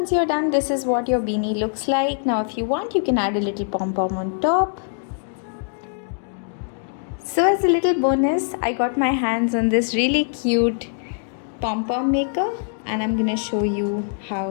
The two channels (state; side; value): silent; right; digital silence